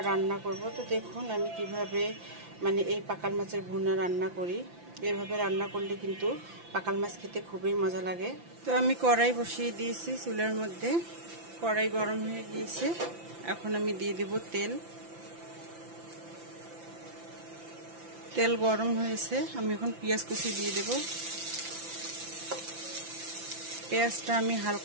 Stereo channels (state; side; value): late; left; 5.9 ms